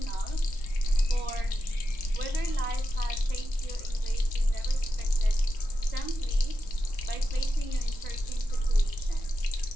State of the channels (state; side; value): late; right; 3.6 ms